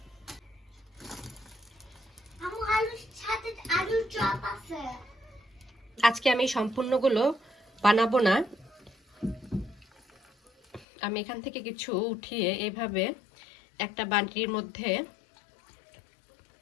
আজকে আমি সম্পূর্ণগুলো বানাবো না, আমি এখান থেকে কিছু উঠিয়ে এইভাবে একটা বাটির মধ্যে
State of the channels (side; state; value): right; drops out; at 10.9 s